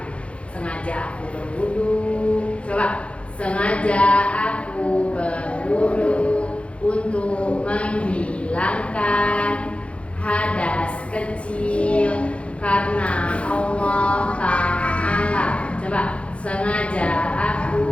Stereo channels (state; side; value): late; right; 0.061 ms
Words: Sengaja aku berwudu. Coba, sengaja aku berwudu untuk menghilangkan hadas kecil karena Allah Ta'ala. Coba, sengaja aku